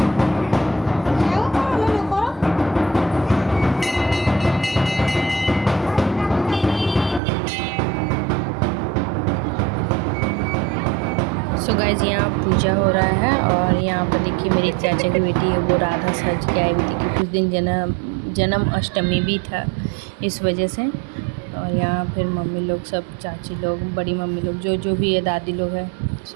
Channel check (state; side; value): drops out; left; at 7.2 s